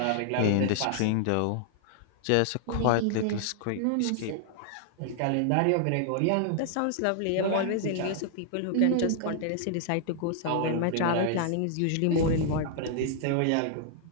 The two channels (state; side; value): different; both; correlation -0.01